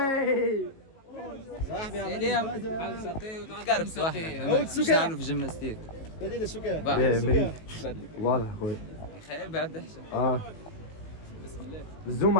صاحبي اليوم قرب صاحبي مش نعملوا في جيمناستيك. بديل السكر. واضح خويا. خير بعد احسن. بسم الله. الزوم ما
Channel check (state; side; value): late; right; 18 ms